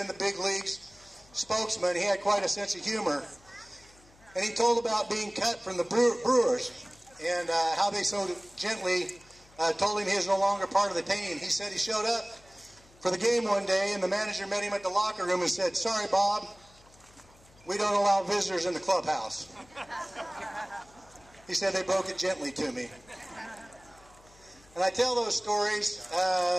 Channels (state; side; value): noise; left; hum, 27 dB below the sound